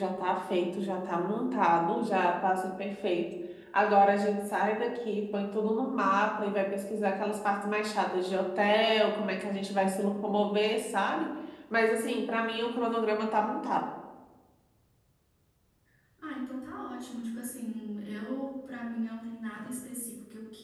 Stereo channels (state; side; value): identical; both; correlation 1.00